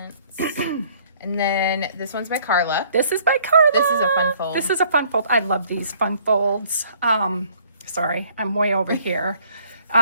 And then this one's by Carla. This is by Carla. This is a fun fold. This is a fun fold. I love these fun folds. Sorry, I'm way over here.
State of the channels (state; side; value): inverted; both; correlation -0.60